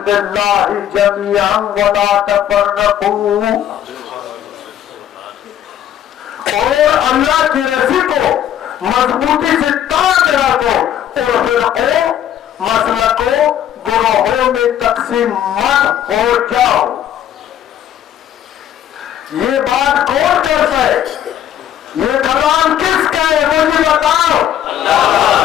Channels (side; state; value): right; quieter; 10.7 dB